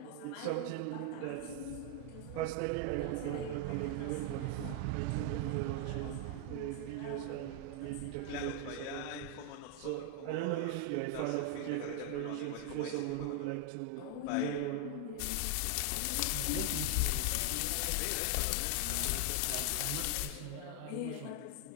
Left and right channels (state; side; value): different; both; correlation 0.00